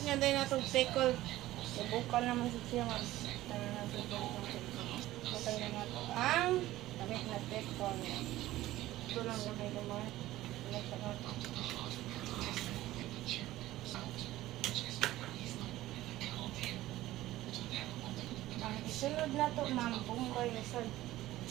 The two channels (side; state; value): left; quieter; 15.8 dB